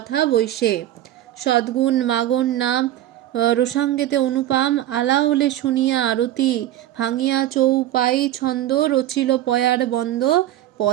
বৈশে। সদ্গুণ মাগণ নাম রসাঙ্গেতে অনুপাম, আলা ওলে শুনিয়া আরতি, ভাঙিয়া চৌপাই ছন্দ, রচিল পয়ার বন্দ,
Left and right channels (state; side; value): quieter; left; 13.2 dB